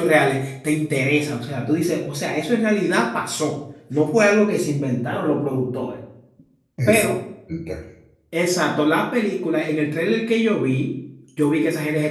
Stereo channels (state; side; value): identical; both; correlation 1.00